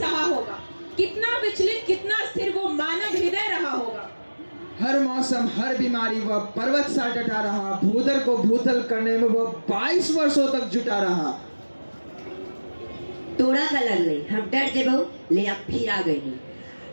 होगा। कितना विचलित कितना स्थिर वो मानव हृदय रहा होगा। हर मौसम हर बीमारी वह पर्वत सा डटा रहा। भूदर को भूतल करने में वह 22 वर्षों तक जुटा रहा। तोड़ा का लग गई हम डर जेबो ले अब फिर आ गई।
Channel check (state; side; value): inverted; both; correlation -1.00